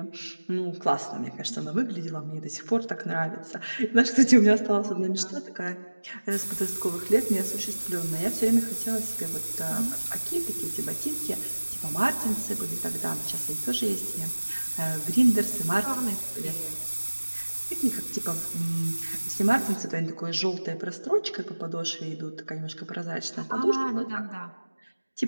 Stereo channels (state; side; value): inverted; both; correlation -1.00